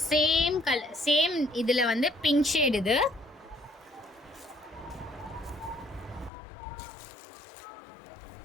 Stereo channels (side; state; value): right; drops out; at 6.3 s